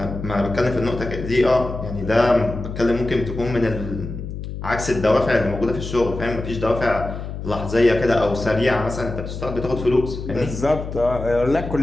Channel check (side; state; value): left; noise; hum, 8 dB below the sound